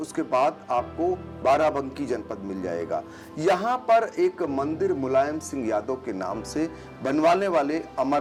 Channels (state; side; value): identical; both; correlation 1.00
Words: बाद आपको बाराबंकी जनपद मिल जाएगा। यहाँ पर एक मंदिर मुलायम सिंह यादव के नाम से बनवाने वाले